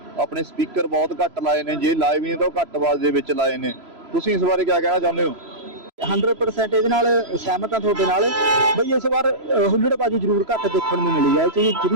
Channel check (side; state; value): left; late; 3.0 ms